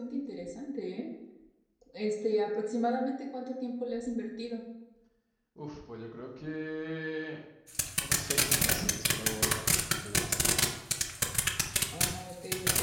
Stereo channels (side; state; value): both; identical; correlation 1.00